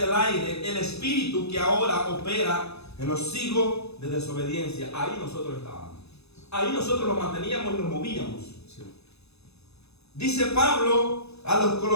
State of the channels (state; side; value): late; right; 0.79 ms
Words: aire, el espíritu que ahora opera en los hijos de desobediencia. Ahí nosotros estábamos. Ahí nosotros nos manteníamos y nos movíamos. Sí. Dice Pablo a los